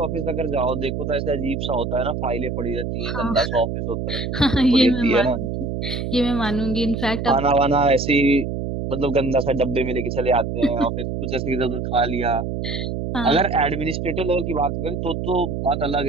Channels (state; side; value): noise; right; hum, 3 dB below the sound